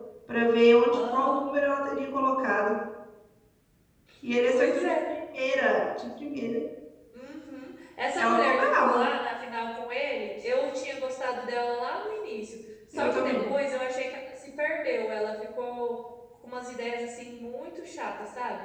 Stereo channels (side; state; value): both; identical; correlation 1.00